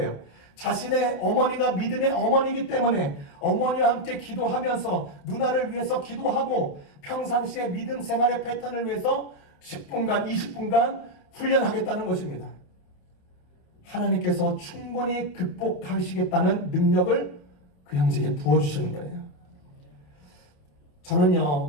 자신의 어머니가 믿음의 어머니이기 때문에 어머니와 함께 기도하면서 누나를 위해서 기도하고 평상시에 믿음 생활의 패턴을 위해서 10분간 20분간 훈련하겠다는 것입니다. 하나님께서 충분히 극복하시겠다는 능력을 그 형제에게 부어주시는 거예요.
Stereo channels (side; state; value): right; late; 28 ms